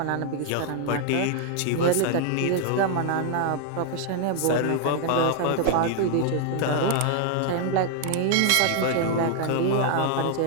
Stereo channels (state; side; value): different; both; correlation 0.00